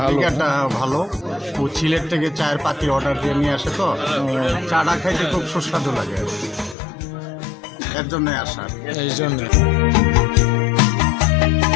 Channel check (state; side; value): drops out; right; at 6.8 s